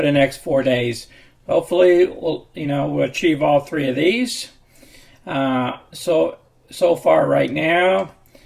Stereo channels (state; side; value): identical; both; correlation 1.00